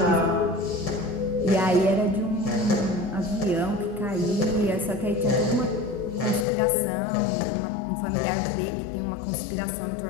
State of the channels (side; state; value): right; drops out; at 6.5 s